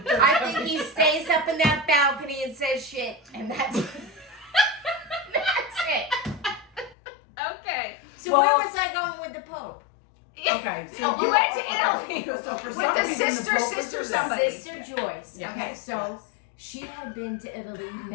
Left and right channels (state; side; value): drops out; right; at 7.0 s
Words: church. I think he stays up in that balcony and says shit, and that's that's it. Okay. So Well- where was I going with the Pope? Okay, so You went to Italy So for with some the reason, sister, the Pope was sister, there. somebody. Sister Joyce. Yes. Okay, so Yes. she had been to Italy